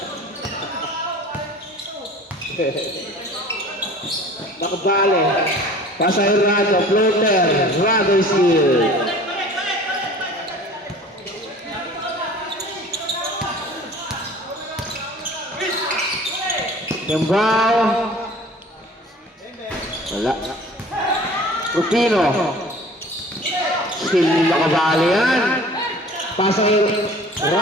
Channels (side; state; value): both; normal; correlation 0.46